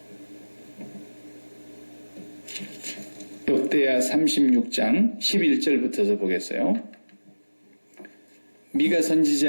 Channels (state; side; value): inverted; both; correlation -1.00